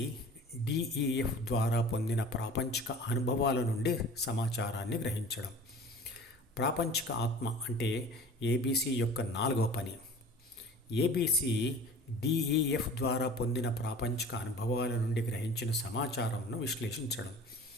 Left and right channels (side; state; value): both; normal; correlation 0.42